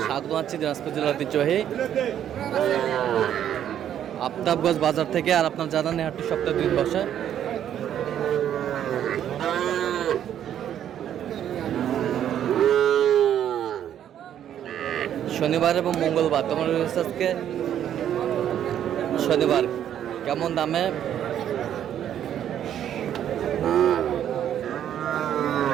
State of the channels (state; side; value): quieter; left; 10.2 dB